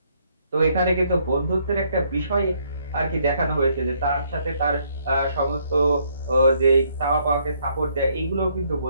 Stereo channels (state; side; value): inverted; both; correlation -0.69